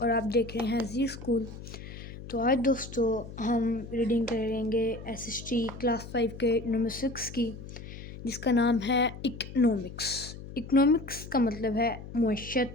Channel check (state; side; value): noise; left; hum, 12 dB below the sound